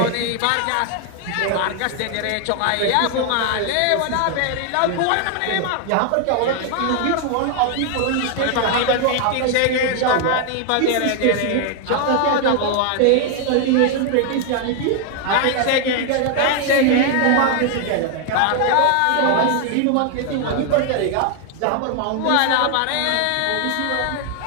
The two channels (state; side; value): different; both; correlation 0.00